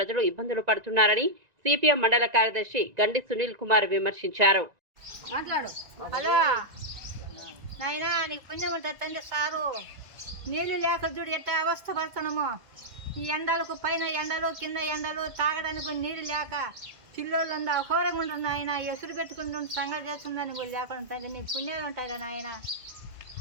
ఇబ్బందులు పడుతున్నారని సిపిఎం మండల కార్యదర్శి గండి సునీల్ కుమార్ విమర్శించారు. హలో నాయనా, నీకు పుణ్యం ఉంటుంది తండ్రి సారు. నీళ్లు లేక చూడు ఎట్లా అవస్థ పడుతున్నాము. ఈ ఎండలకు పైన ఎండలు కింద ఎండలు తాగడానికి నీళ్ళు లేక పిల్లోళ్ళు ఉందా ఘోరంగా ఉంటుంది ఆయన. ఎసురు పెట్టుకుంటుంటే సంగతి చేస్తుందని కూడా లేకుండా తండ్రి నీకు పుణ్యాలు ఉంటాయి కదా నాయన.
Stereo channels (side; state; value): left; late; 1.9 ms